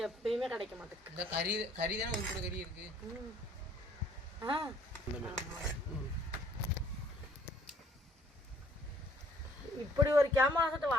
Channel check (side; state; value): both; normal; correlation 0.60